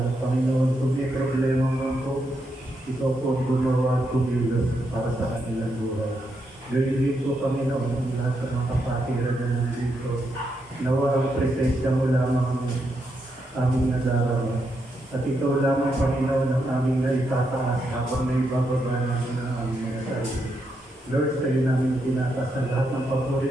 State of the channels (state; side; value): normal; both; correlation 0.81